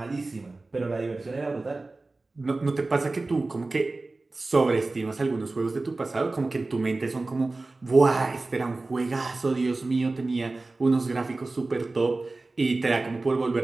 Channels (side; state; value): left; quieter; 3.3 dB